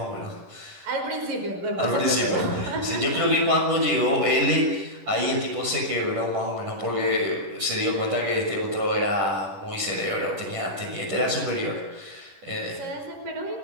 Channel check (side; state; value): left; late; 11 ms